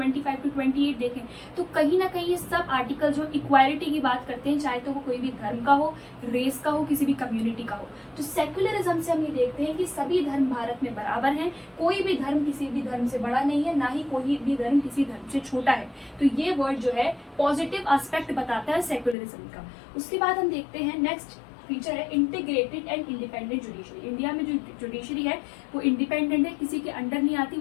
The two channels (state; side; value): drops out; right; at 19.2 s